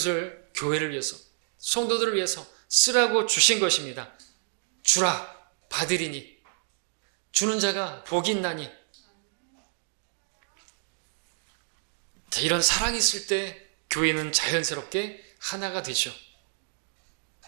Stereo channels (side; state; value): left; silent; digital silence